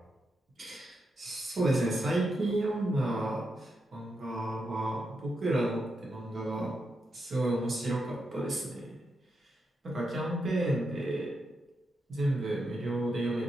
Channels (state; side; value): normal; both; correlation 0.84